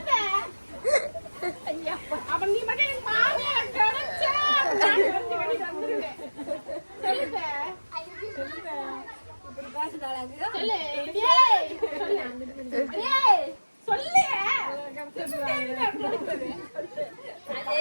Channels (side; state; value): both; inverted; correlation -1.00